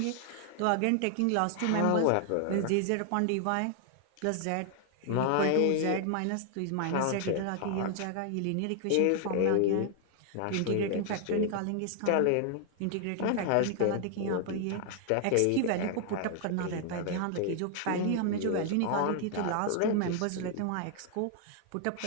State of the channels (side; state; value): both; different; correlation 0.00